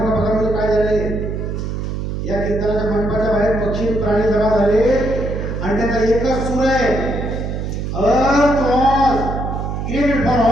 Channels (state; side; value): noise; right; hum, 4 dB below the sound